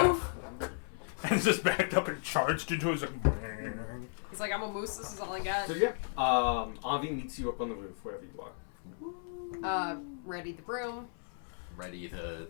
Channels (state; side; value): silent; right; 55 dB below the other